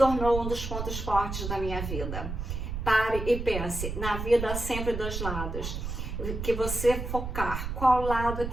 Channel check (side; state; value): right; noise; rumble, 5 dB below the sound